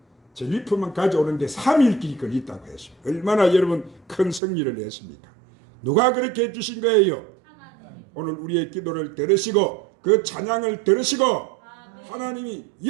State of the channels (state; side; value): drops out; left; at 4.4 s